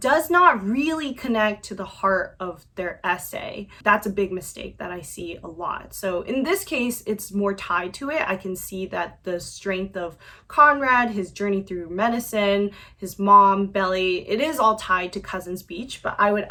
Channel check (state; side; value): identical; both; correlation 1.00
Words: not really connect to the heart of their essay. That's a big mistake that I see a lot. So in this case, it's more tied to it. I can see that the strength of Conrad, his journey through medicine, his mom, Belly, it is all tied to Cousins Beach, but I would